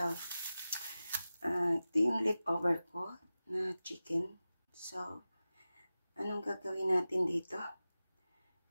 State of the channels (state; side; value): inverted; both; correlation -0.95